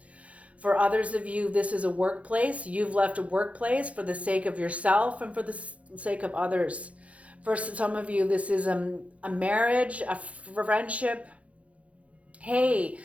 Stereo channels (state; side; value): late; left; 0.065 ms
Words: For others of you, this is a workplace. You've left a workplace for the sake of yourself and for the sake of others. For some of you, this is a marriage, a friendship. Hey,